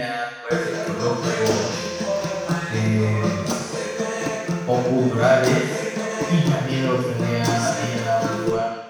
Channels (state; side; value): identical; both; correlation 1.00